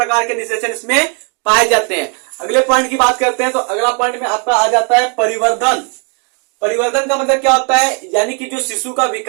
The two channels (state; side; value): quieter; left; 38.1 dB